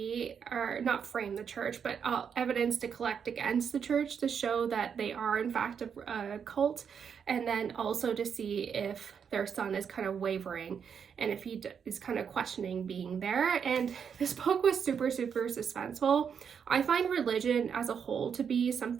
or not frame the church, but evidence to collect against the church to show that they are in fact a cult, and then also to see if their son is kind of wavering and if he is kind of questioning being there. And this book was super, super suspenseful. I find religion as a whole to be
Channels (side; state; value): left; quieter; 7.1 dB